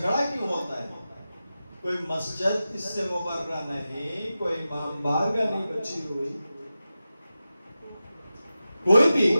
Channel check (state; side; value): inverted; both; correlation -0.93